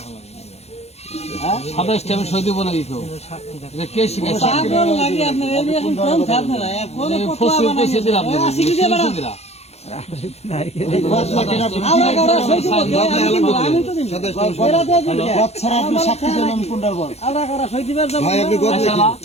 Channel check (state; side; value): late; right; 0.31 ms